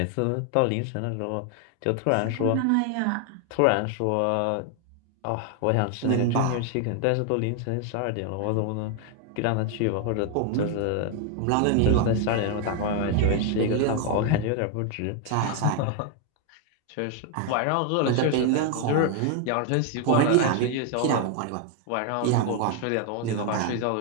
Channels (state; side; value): different; both; correlation 0.00